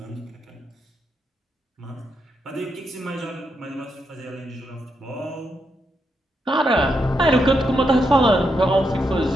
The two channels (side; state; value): both; normal; correlation 0.82